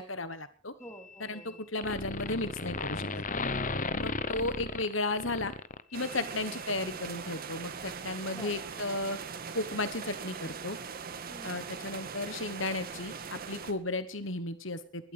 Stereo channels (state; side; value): normal; both; correlation -0.09